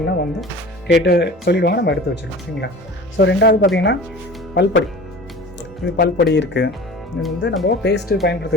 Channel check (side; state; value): both; normal; correlation 0.40